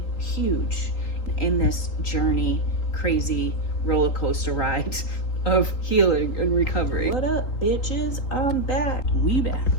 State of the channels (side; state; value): right; late; 3.8 ms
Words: huge in this journey, crazy roller coaster ride of healing and recovery. What up, bitches? I'm back. We back.